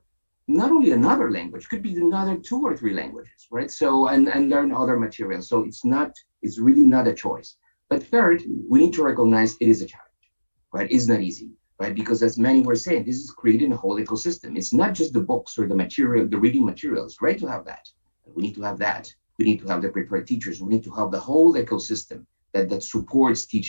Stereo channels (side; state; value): both; inverted; correlation -1.00